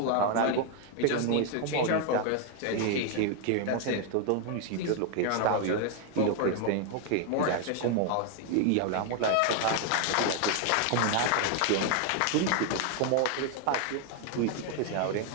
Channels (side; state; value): both; different; correlation 0.00